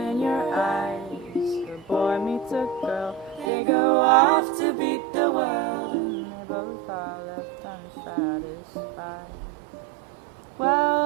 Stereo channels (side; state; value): left; drops out; at 3.5 s